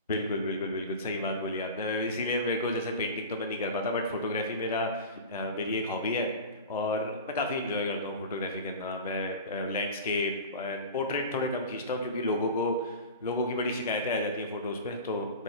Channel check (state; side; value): inverted; both; correlation -0.31